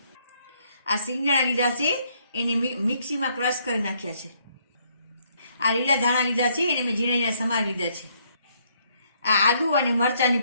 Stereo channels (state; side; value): inverted; both; correlation -0.70